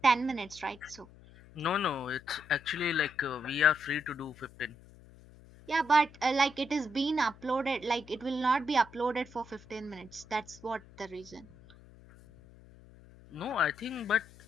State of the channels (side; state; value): left; noise; hum, 22 dB below the sound